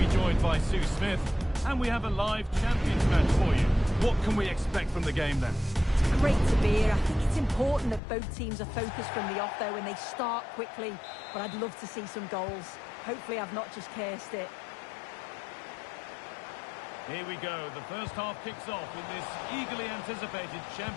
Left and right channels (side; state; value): right; drops out; at 8.0 s